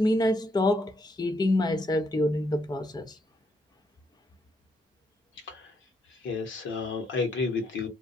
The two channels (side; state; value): both; normal; correlation 0.76